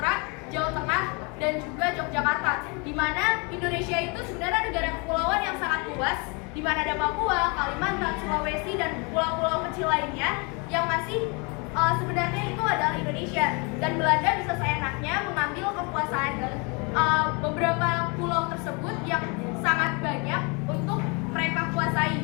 Jawa Tengah, dan juga Yogyakarta. Di mana Indonesia itu sebenarnya negara kepulauan yang sangat luas, di mana ada Papua, Kalimantan, Sulawesi, dan pulau-pulau kecil lainnya yang masih sebenarnya itu adalah Indonesia. Dan Belanda bisa seenaknya mengambil kekuasaan beberapa pulau tersebut yang sangat banyak untuk mereka kuasai,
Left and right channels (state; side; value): quieter; right; 31.3 dB